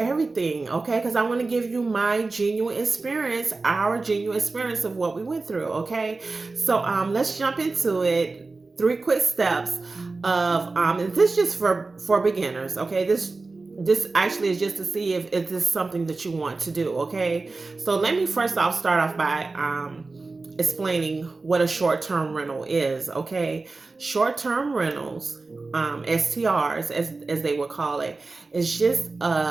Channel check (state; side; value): quieter; left; 3.7 dB